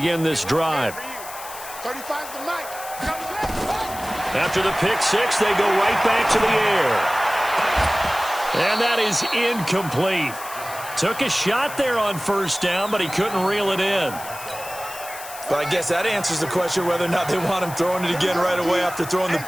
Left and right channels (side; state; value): left; noise; hiss, 13 dB below the sound